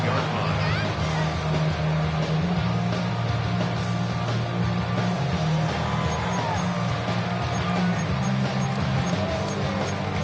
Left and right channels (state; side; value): identical; both; correlation 1.00